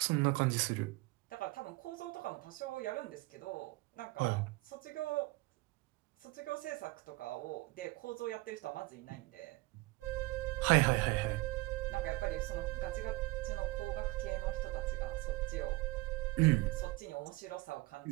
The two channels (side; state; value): left; quieter; 21.9 dB